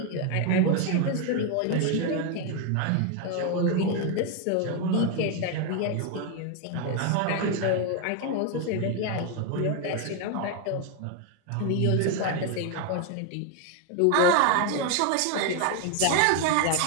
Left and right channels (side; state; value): both; different; correlation 0.01